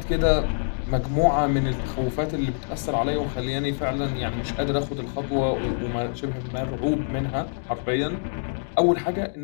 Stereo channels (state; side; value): silent; right; digital silence